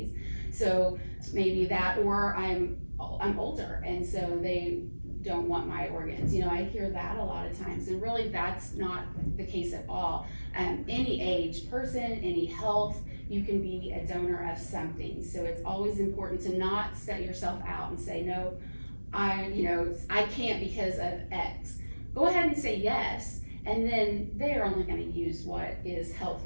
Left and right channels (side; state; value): both; inverted; correlation -1.00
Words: So maybe that, or I'm older, and so they don't want my organs. I hear that a lot of times, and really that's not the case at all. Any age person, any health, you can be a donor of something. So it's always important to not set yourself out and say, no, I can't because of X. Go ahead and say yes, and then they're only gonna use what is